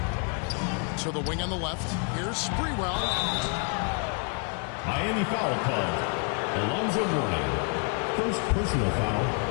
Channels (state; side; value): quieter; right; 38.3 dB